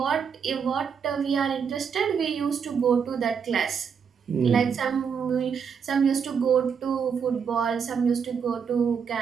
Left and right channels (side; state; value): left; quieter; 6.7 dB